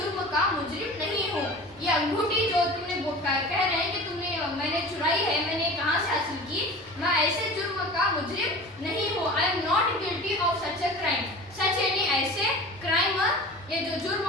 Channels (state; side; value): normal; both; correlation 0.37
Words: का मुजरिम नहीं हूँ। ये अंगूठी जो तुमने कह रहे हैं कि मैंने चुराई है, मैंने कहाँ से हासिल की, मैं ऐसे जुर्म का मुजरिम नहीं हूँ। I am not guilty of such a crime, such यानी ऐसे, क्राइम ये जो जुर्म